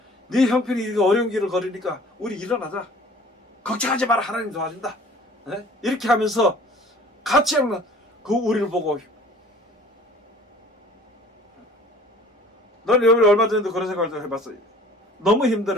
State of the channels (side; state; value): both; normal; correlation 0.49